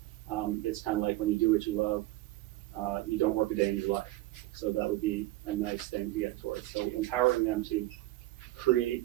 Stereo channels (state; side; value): quieter; left; 17.5 dB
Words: it's kind of like when you do what you love, you don't work a day in your life. So that would be a nice thing to get towards. So empowering them to create